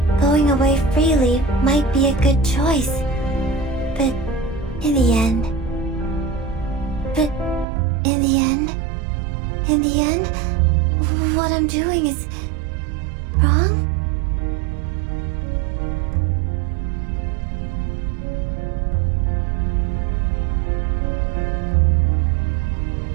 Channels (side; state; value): left; drops out; at 7.7 s